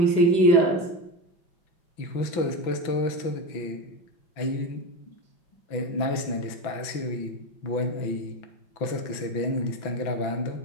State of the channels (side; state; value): right; late; 5.9 ms